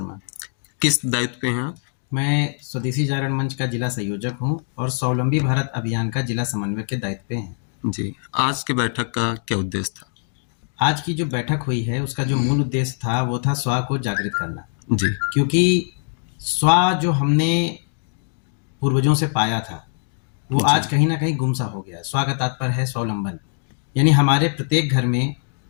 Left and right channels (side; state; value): right; silent; 64 dB below the other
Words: किस दायित्व पे हैं आप? मैं स्वदेशी जागरण मंच का जिला संयोजक हूं और स्वावलंबी भारत अभियान का जिला समन्वयक के दायित्व पे हैं। जी, आज के बैठक का क्या उद्देश्य था? आज की जो बैठक हुई है उसका जो मूल उद्देश्य था वो था स्व को जागृत करना। जी, क्योंकि स्व जो हमने पूर्वजों से पाया था वो आज कहीं ना कहीं गुमसा हो गया। स्व का तात्पर्य है स्वावलंबन, यानी हमारे प्रत्येक घर में